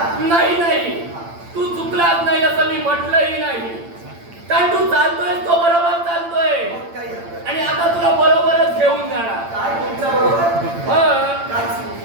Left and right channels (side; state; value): left; late; 8.8 ms